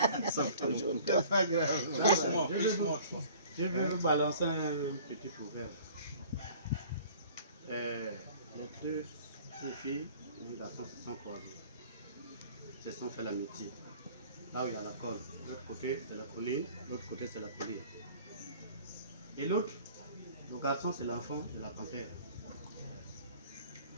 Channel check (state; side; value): inverted; both; correlation -0.49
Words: pas grave. Je vais vous balancer un petit proverbe. Les deux filles, les garçons se sont croisés. Se sont fait l'amitié. Là où il y a la colle, l'autre côté c'est la colline, l'autre côté c'est la colline. Et l'autre, le garçon c'est l'enfant de la panthère.